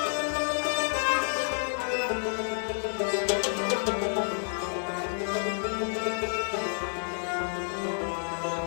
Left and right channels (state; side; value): silent; right; digital silence